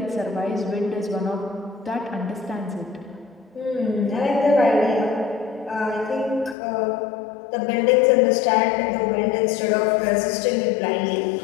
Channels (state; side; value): drops out; right; at 6.6 s